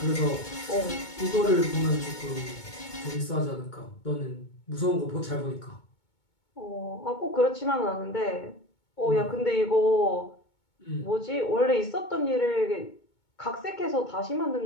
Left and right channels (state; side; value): late; right; 2.2 ms